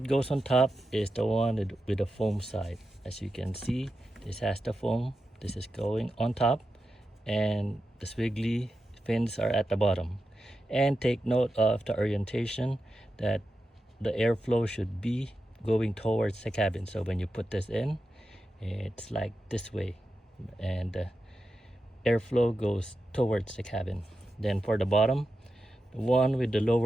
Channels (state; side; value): normal; both; correlation 0.90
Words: goes on top is the one with the foam side. As you can see, this has the foam. This is going on top, and the squiggly fins are at the bottom. And take note of the orientation, that the airflow should be going towards the cabin. So when you put this in, it's like this way, and the airflow goes towards the cabin. Then for the bottom, the one with the